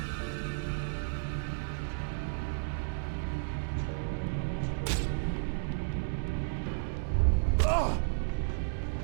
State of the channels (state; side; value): silent; left; digital silence